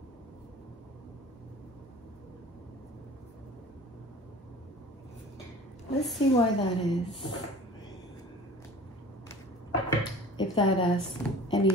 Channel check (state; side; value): normal; both; correlation 0.44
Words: Let's see why that is. If that has any